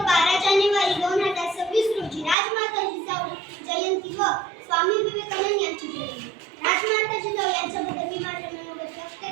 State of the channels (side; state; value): left; drops out; at 2.4 s